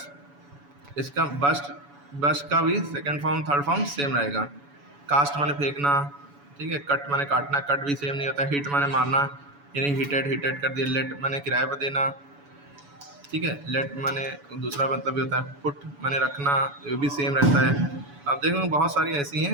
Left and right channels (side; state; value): left; late; 7.0 ms